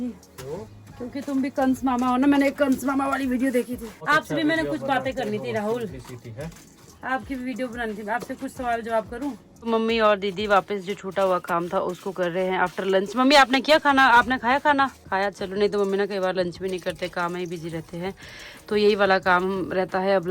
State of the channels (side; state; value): both; identical; correlation 1.00